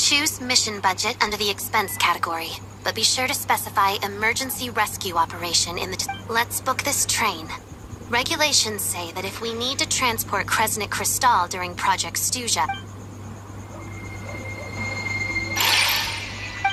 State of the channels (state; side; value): identical; both; correlation 1.00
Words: mission budget under the expense category, but be sure to specify emergency rescue operation in the... Let's book this train. Regulations say that if we need to transport Kresnik Crystal during Project Stuja...